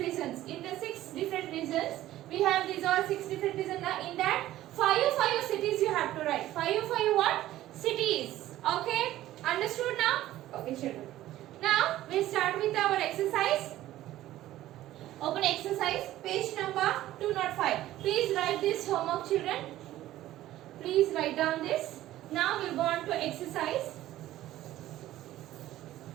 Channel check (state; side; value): quieter; left; 14.5 dB